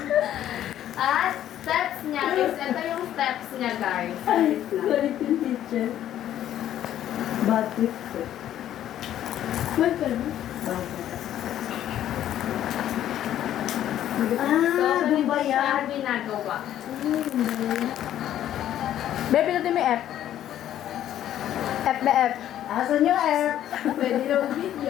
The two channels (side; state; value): right; quieter; 11.6 dB